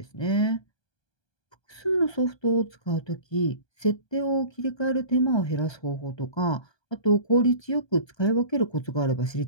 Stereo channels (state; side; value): late; right; 1.2 ms